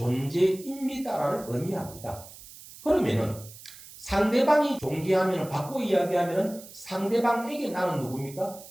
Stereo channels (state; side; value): noise; right; hiss, 18 dB below the sound